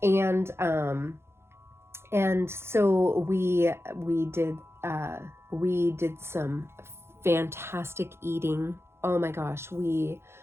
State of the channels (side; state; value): left; late; 0.12 ms